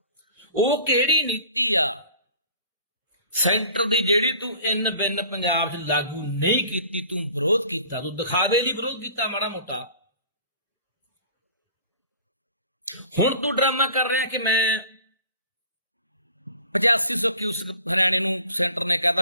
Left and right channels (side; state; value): both; inverted; correlation -0.47